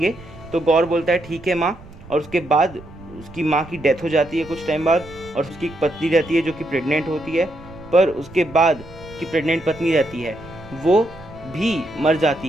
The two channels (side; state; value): right; noise; rumble, 19 dB below the sound